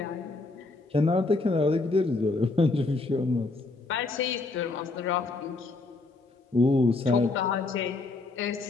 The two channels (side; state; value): right; quieter; 3.4 dB